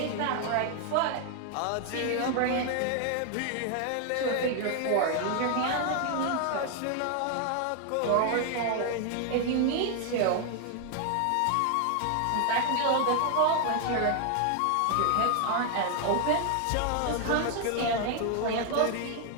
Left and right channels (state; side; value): different; both; correlation 0.00